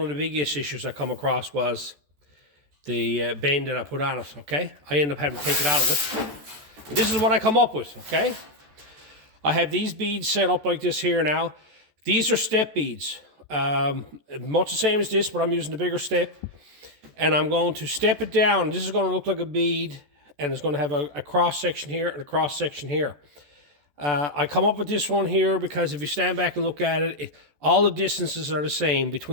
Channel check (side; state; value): left; late; 14 ms